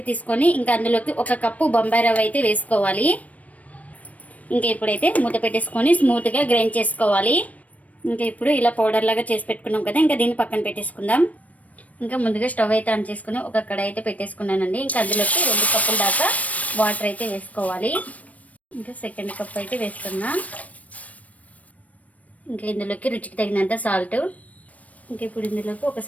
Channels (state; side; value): late; right; 0.069 ms